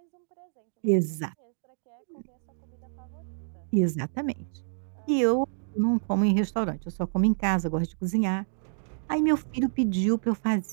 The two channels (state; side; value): silent; left; digital silence